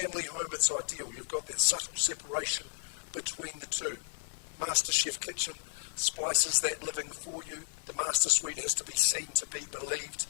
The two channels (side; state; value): right; silent; digital silence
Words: home, it's ideal. You've got that subtle separation between the two. Master Chef Kitchen splices that living for you. The master suite has to be seen to be believed.